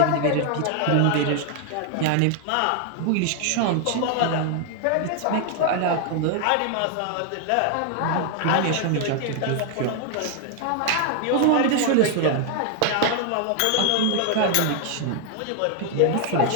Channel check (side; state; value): both; different; correlation 0.00